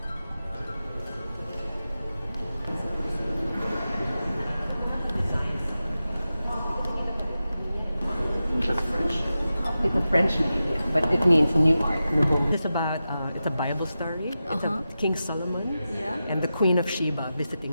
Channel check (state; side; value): inverted; both; correlation -0.92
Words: It's a French name, yes, but it means new art. It's about it's a Bible story. It's about King Solomon and the Queen of Sheba